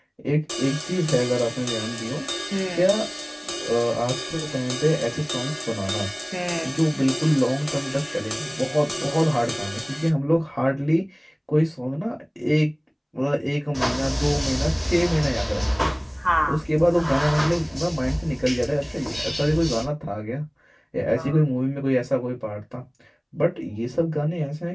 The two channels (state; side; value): identical; both; correlation 1.00